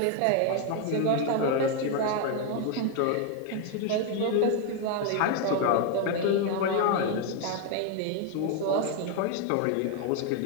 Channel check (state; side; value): different; both; correlation 0.01